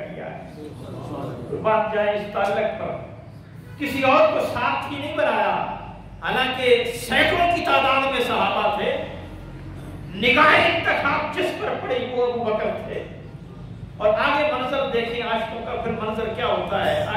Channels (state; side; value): identical; both; correlation 1.00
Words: کیا ہے۔ بات جائے اس تعلق پر، کسی اور کو ساتھی نہیں بنایا، حالانکہ سینکڑوں کی تعداد میں صحابہ تھے، نگاہ انتخاب جس پر پڑی وہ ابو بکر تھے۔ اور آگے منظر دیکھیں عاشقوں کا پھر منظر کیا ہوتا ہے،